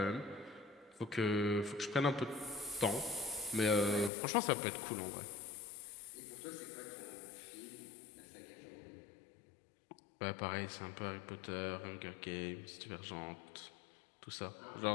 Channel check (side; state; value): right; drops out; at 4.1 s